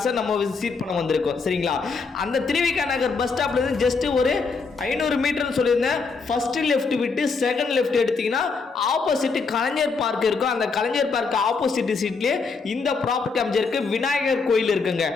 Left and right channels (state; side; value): quieter; right; 4.6 dB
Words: நம்ம விசிட் பண்ண வந்திருக்கோம். சரிங்களா? அந்த திருவிக்கா நகர் பஸ் ஸ்டாப்ல இருந்து ஜஸ்ட் ஒரு 500 மீட்டர் சொல்லியிருந்தேன். ஃபர்ஸ்ட் லெஃப்ட் விட்டு செகண்ட் லெஃப்ட் எடுத்தீங்கன்னா ஆப்போசிட் கலைஞர் பார்க் இருக்கும். அந்த கலைஞர் பார்க் ஆப்போசிட் சீட்லேயே இந்த ப்ராப்பர்ட்டி அமைஞ்சிருக்கு. விநாயகர் கோயில் இருக்குங்க.